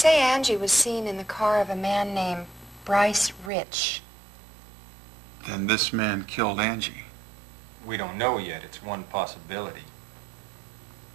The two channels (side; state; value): left; drops out; at 3.5 s